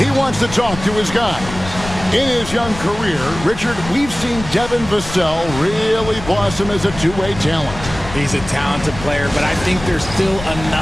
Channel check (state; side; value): noise; left; rumble, 11 dB below the sound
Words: wants to talk to his guys. In his young career, Richard, we've seen Devin Vassell really blossom as a two-way talent. He's a talented player, but I think there's still